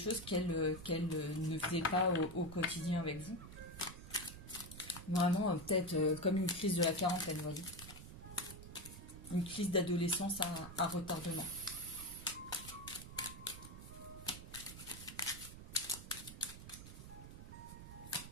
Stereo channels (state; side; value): noise; right; rumble, 12 dB below the sound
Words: qu'elle ne faisait pas au quotidien avec vous. Vraiment peut-être comme une crise de la quarantaine, vous voyez. Une crise d'adolescence à retardement.